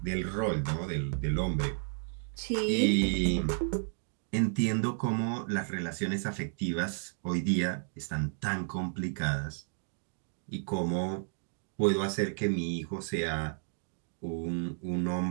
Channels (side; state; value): left; silent; digital silence